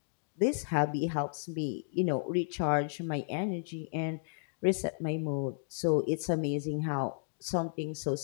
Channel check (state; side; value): silent; right; digital silence